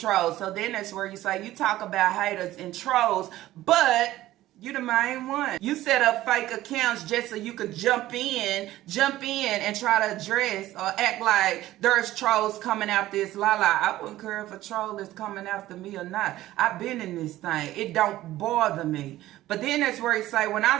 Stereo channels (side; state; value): left; quieter; 15.2 dB